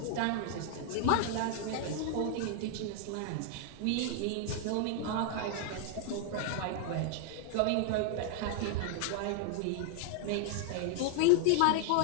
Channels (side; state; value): both; different; correlation 0.00